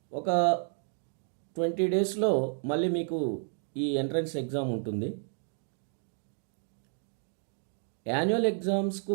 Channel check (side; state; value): left; silent; 57 dB below the other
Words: ఒక 20 డేస్లో మళ్ళీ మీకు ఈ ఎంట్రన్స్ ఎగ్జామ్ ఉంటుంది. యాన్యువల్ ఎగ్జామ్స్కు